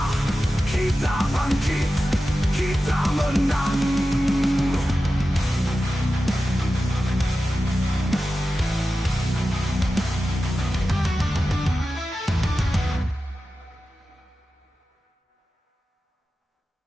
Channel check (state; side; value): normal; both; correlation 0.93